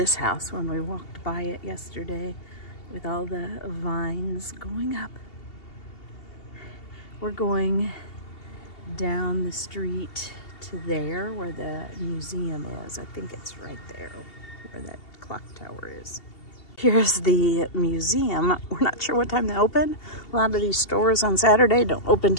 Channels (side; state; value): right; late; 2.7 ms